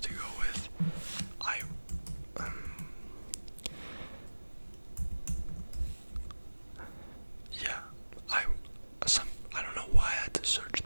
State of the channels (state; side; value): inverted; both; correlation -1.00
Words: to go with, yeah, I don't know why I had to search